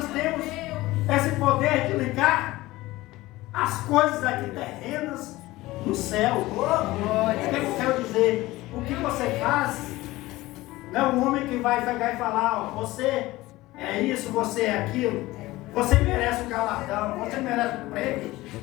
temos esse poder de ligar as coisas aqui terrenas no céu. O que eu quero dizer? O que você faz não é o homem que vai pegar e falar: ó, você é isso, você é aquilo, você merece o galardão, você merece o prêmio.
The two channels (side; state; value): right; quieter; 18.5 dB